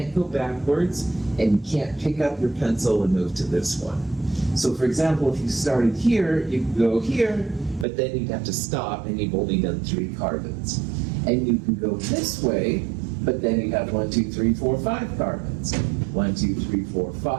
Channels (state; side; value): drops out; left; at 7.9 s